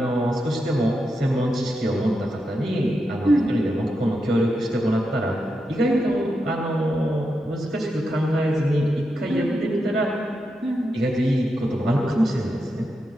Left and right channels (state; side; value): normal; both; correlation 0.86